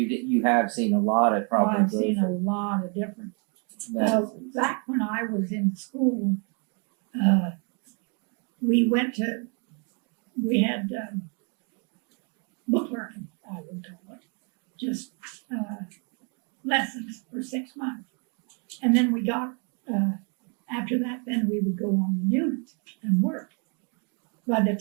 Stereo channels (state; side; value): quieter; left; 37.1 dB